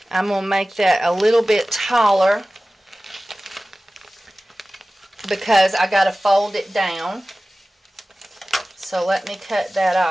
I'm going to make that a little bit taller because I got to fold it down. So let me cut that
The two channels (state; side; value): normal; both; correlation 0.97